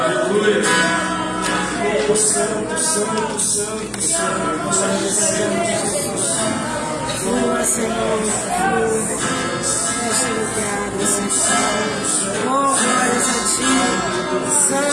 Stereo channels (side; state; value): both; identical; correlation 1.00